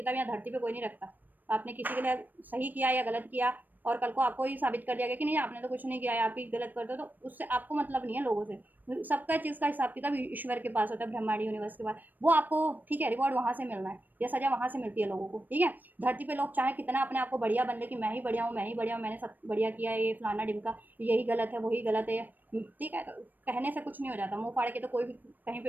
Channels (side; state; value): left; late; 0.088 ms